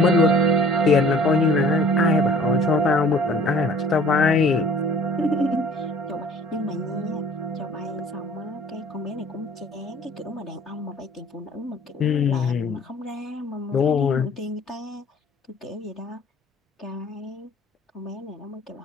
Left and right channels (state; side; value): normal; both; correlation 0.50